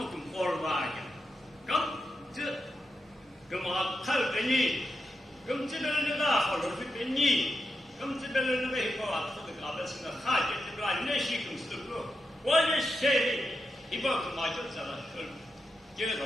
for wagon. Come to come up, tell the knee. Come to the laugh or the knee. Come to the way for us to the goddess in the heart of the blind nation comes to go. What is say? He bought my daughter. Get it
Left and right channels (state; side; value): normal; both; correlation 0.87